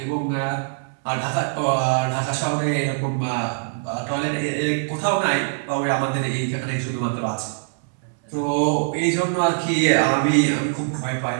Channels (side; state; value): left; silent; 64 dB below the other